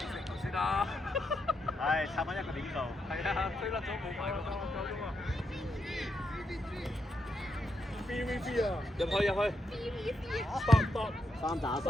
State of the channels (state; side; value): normal; both; correlation 0.82